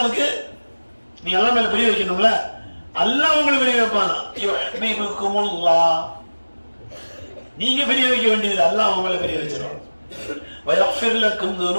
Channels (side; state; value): both; inverted; correlation -1.00